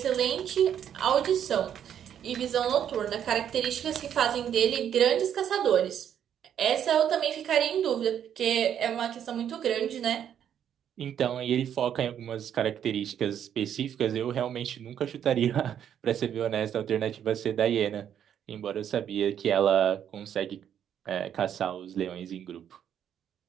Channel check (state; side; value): quieter; left; 9.4 dB